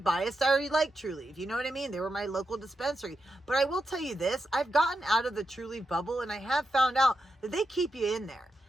I already liked Trulieve. You know what I mean? They were my local dispensary. But I will tell you this, I've gotten out of the Trulieve bubble, and I have found out that they keep you in there.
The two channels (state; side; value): normal; both; correlation 0.86